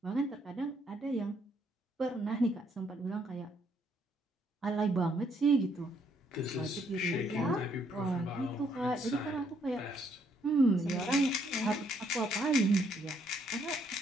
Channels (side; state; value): both; normal; correlation 0.70